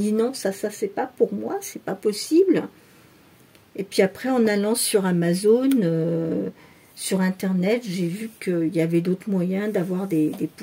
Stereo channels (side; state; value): both; identical; correlation 1.00